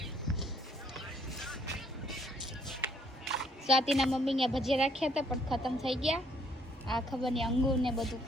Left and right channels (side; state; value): both; normal; correlation 0.66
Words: સ્વાતિના મમ્મી ને ભજીયા રાખ્યા હતા પણ ખતમ થઈ ગયા. આ ખબર નહીં અંગૂર ને બધું